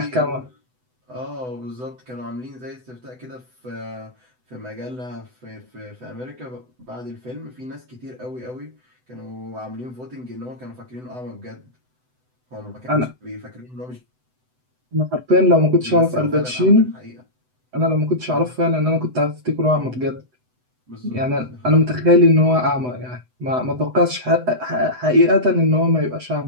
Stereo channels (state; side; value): late; left; 7.9 ms